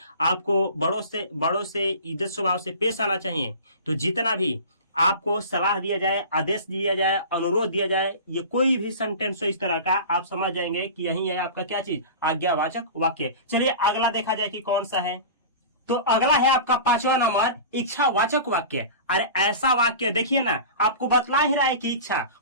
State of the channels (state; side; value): inverted; both; correlation -0.35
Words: आपको बड़ों से इज्जत स्वभाव से पेश आना चाहिए। तो जितना भी आपको सलाह दिया जाए, आदेश दिया जाए, अनुरोध दिया जाए, ये कोई भी सेंटेंस हो इस तरह का, आप समझ जाएंगे कि यही है आपका क्या चीज? आज्ञावाचक वाक्य। चलिए अगला देखा जाए कि कौन सा है। तो अगला है आपका 5वां नंबर, इच्छावाचक वाक्य। अरे ऐसा वाक्य देखिए ना, आपको बतला ही रहा है कि इच्छा